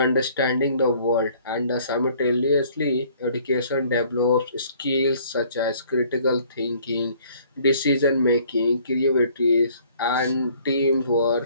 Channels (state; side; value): inverted; both; correlation -0.58